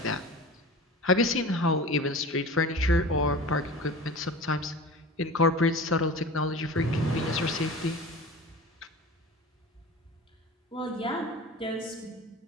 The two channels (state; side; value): normal; both; correlation 0.35